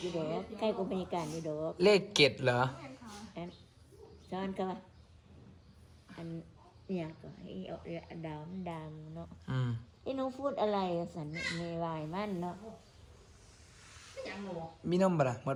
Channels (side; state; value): both; identical; correlation 1.00